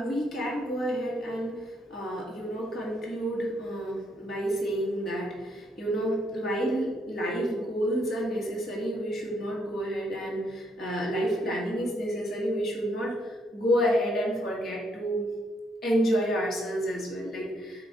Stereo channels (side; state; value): both; normal; correlation 0.72